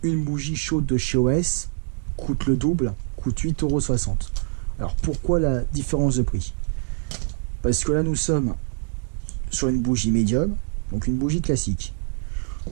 une bougie chaude de chez OS coûte le double, coûte 8,60 €. Alors pourquoi la différence de prix? Parce que là nous sommes sur une bougie médium, donc une bougie classique.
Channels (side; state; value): left; silent; digital silence